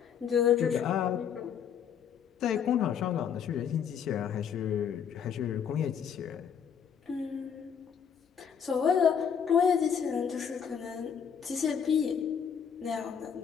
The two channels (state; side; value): quieter; right; 7.7 dB